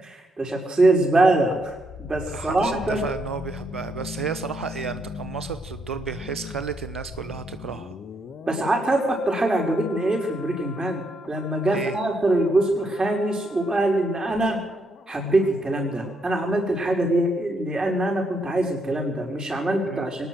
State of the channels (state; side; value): normal; both; correlation 0.77